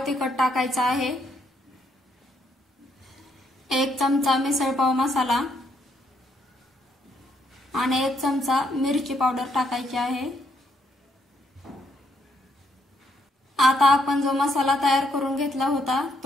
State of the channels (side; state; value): both; normal; correlation 0.74